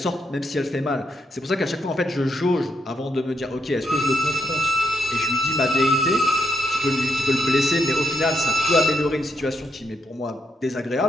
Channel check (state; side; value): normal; both; correlation 0.80